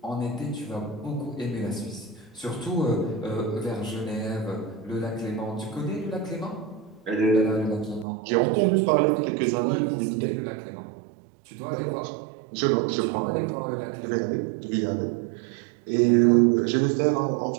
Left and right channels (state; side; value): drops out; left; at 8.1 s